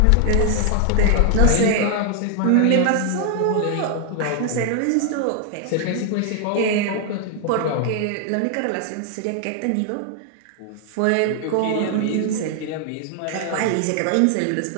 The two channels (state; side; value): different; both; correlation 0.00